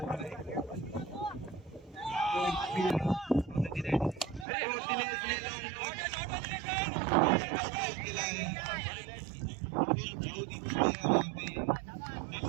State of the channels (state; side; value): drops out; left; at 4.5 s